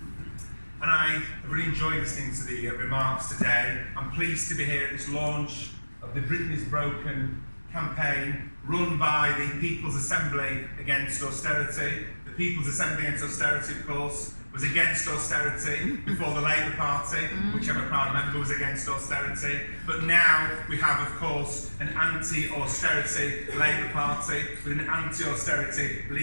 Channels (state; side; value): inverted; both; correlation -1.00